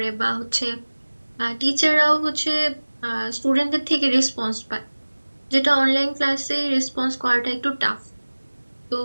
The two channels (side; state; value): both; inverted; correlation -1.00